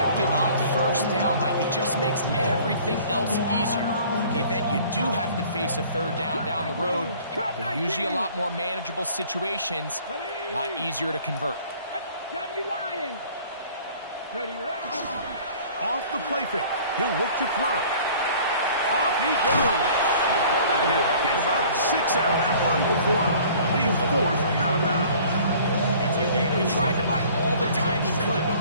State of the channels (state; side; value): inverted; both; correlation -0.51